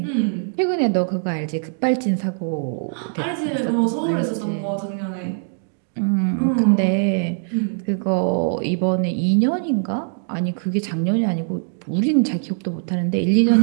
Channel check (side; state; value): left; silent; digital silence